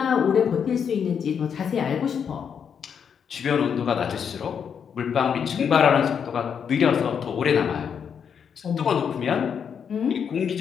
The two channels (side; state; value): right; quieter; 7.3 dB